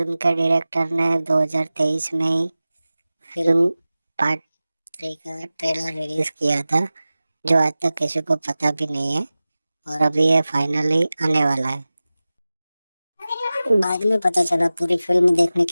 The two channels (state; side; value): inverted; both; correlation -0.97